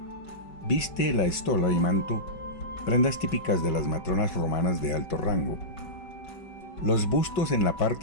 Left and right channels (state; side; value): late; right; 5.2 ms